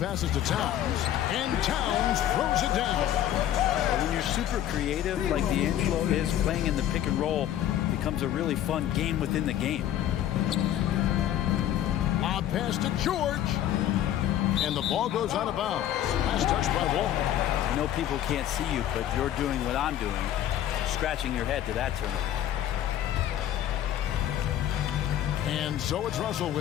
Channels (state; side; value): quieter; right; 11.6 dB